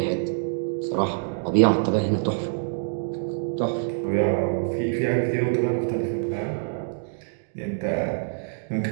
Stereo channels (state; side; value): silent; left; digital silence